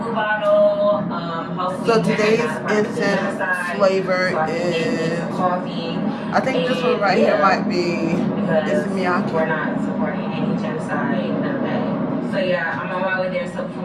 Bottle. So today's incense flavor is coffee. I think this one right here might be Miyake. We're not supporting any genocide, none of that. So yeah, I'm on my way there so we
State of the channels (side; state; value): both; identical; correlation 1.00